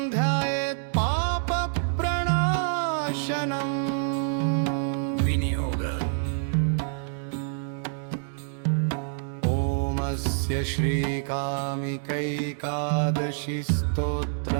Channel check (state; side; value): silent; left; digital silence